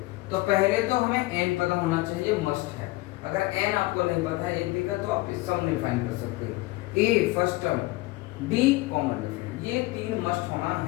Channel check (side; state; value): right; quieter; 20.5 dB